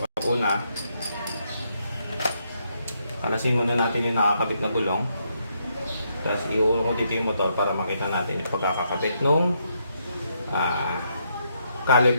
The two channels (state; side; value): inverted; both; correlation -0.77